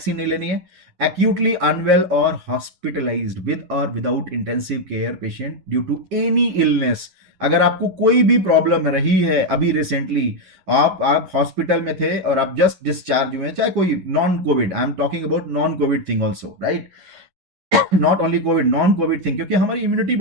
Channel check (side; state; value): left; late; 11 ms